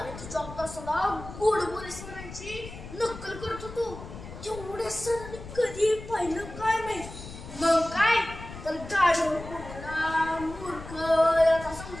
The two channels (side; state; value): left; noise; rumble, 13 dB below the sound